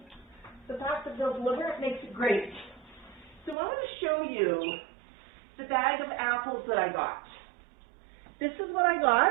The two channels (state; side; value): drops out; left; at 3.6 s